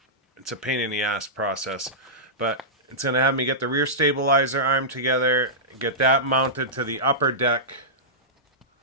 a pain in the ass process, but it's gonna have me get the rear stabilizer arm together, get that mounted to the upper deck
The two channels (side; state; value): both; normal; correlation -0.15